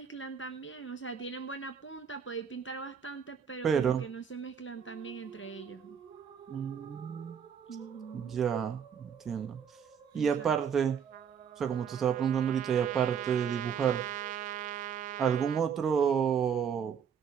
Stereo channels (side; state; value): left; quieter; 7.5 dB